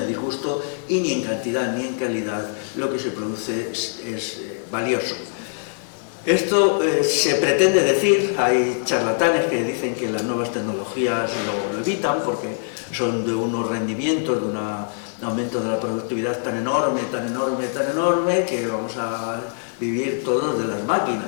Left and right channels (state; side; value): silent; right; digital silence